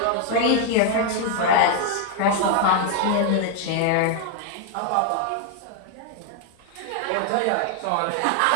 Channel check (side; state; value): both; different; correlation 0.01